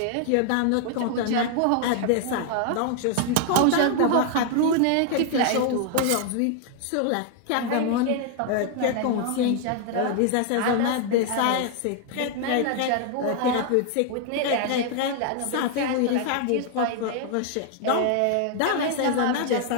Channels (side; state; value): both; different; correlation 0.00